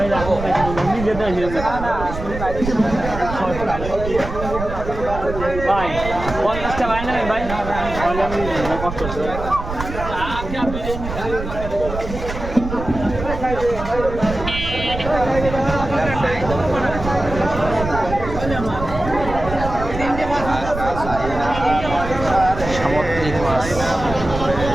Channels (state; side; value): noise; right; rumble, 8 dB below the sound